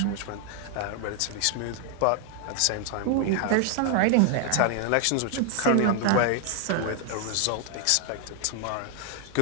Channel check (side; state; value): both; different; correlation 0.00